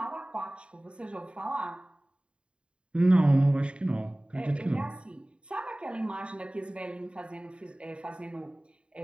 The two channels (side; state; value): left; late; 0.055 ms